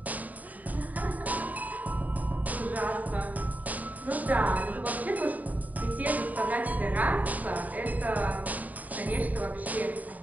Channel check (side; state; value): left; late; 0.076 ms